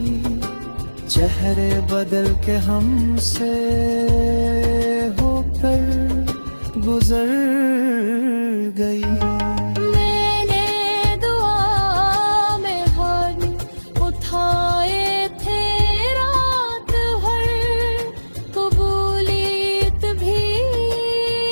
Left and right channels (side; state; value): both; inverted; correlation -1.00